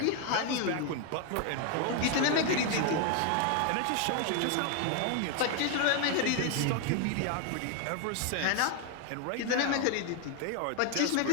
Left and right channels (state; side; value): different; both; correlation 0.01